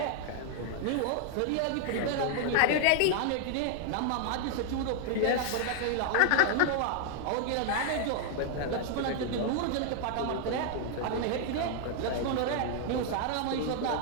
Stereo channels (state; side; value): different; both; correlation 0.00